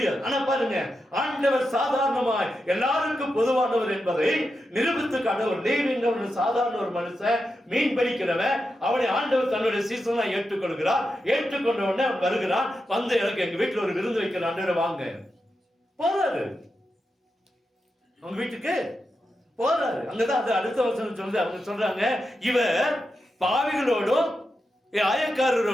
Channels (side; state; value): both; normal; correlation 0.88